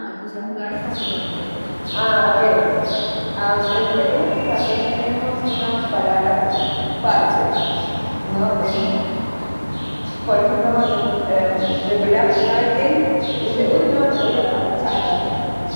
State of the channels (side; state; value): both; inverted; correlation -1.00